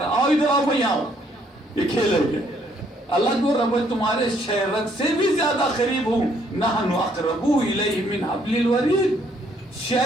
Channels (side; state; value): both; normal; correlation 0.67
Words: آؤ ادھر آؤ، میں یہاں ہوں. یہ کھیل ہے یہ. اللہ کو رب تمہارے شہرت سے بھی زیادہ قریب ہوں. نحن اقرب الیہ من حبل الورید.